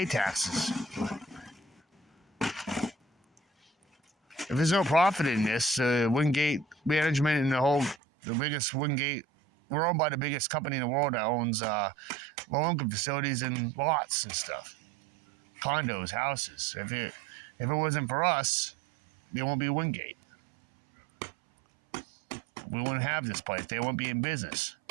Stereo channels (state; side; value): drops out; left; at 8.0 s